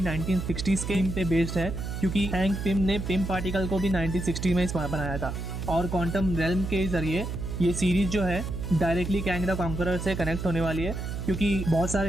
1960s के थीम पे बेस्ड है, क्योंकि हैंक पिम ने पिम पार्टिकल को भी 1960 में बनाया था। और क्वांटम रेल्म के जरिए ये सीरीज जो है डायरेक्टली कैंग द कॉन्करर से कनेक्ट होने वाली है, क्योंकि बहुत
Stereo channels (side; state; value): right; noise; hum, 5 dB below the sound